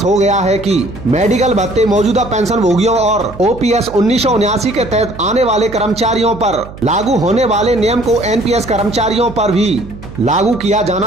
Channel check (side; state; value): right; noise; hum, 15 dB below the sound